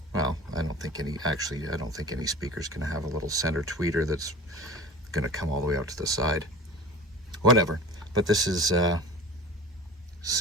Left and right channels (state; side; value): normal; both; correlation 0.38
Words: well, I don't think any speaker's going to have a little center tweeter that's going to come all the way out to the side. Whatever. But this is